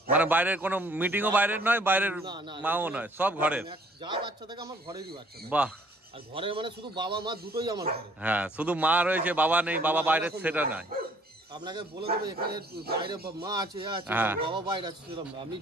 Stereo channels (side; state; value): both; normal; correlation 0.59